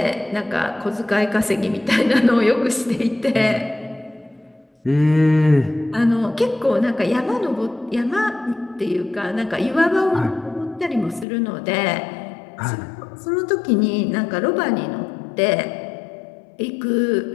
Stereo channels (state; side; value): drops out; right; at 11.2 s